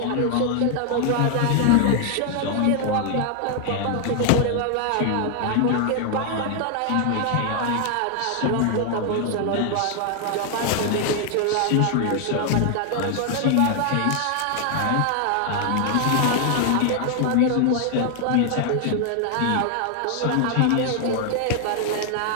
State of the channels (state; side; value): different; both; correlation 0.00